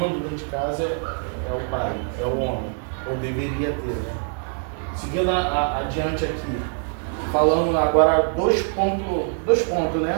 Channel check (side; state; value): left; silent; 56 dB below the other